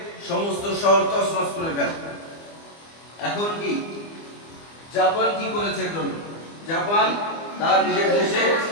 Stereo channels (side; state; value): right; late; 25 ms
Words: সমস্ত শহর তছনছ করে ফেলে। এখন কি জাপান কি করেছে? জাপান তার নিজের দেশে